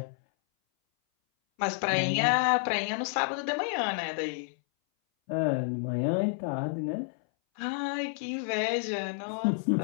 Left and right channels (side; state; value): right; silent; 58 dB below the other